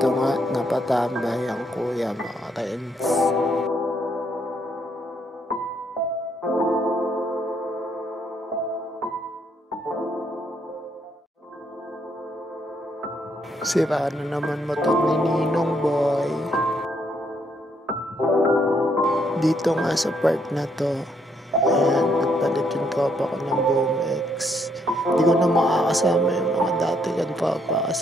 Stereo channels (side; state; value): both; normal; correlation 0.73